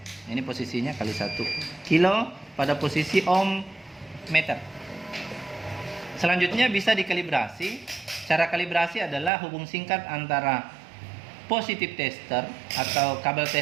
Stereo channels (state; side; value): drops out; left; at 9.3 s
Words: Ini posisinya kali 1 kilo pada posisi ohm meter. Selanjutnya bisa dikalibrasi. Cara kalibrasi adalah hubung singkat antara positif tester atau kabel